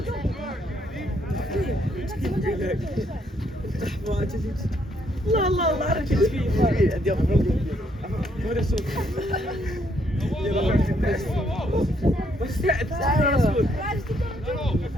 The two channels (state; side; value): normal; both; correlation 0.71